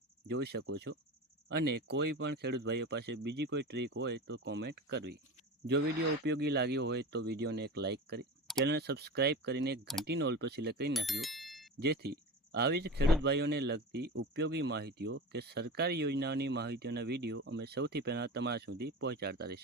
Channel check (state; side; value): normal; both; correlation 0.29